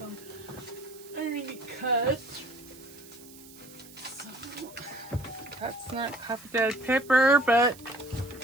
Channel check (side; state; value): right; noise; hiss, 20 dB below the sound